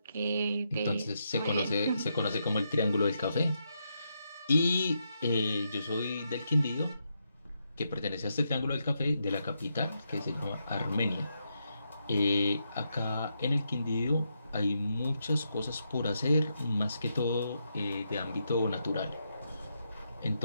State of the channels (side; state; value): both; inverted; correlation -0.82